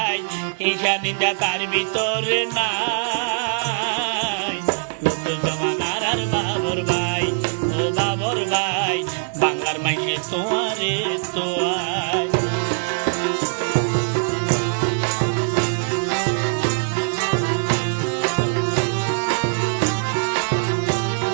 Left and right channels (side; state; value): left; silent; digital silence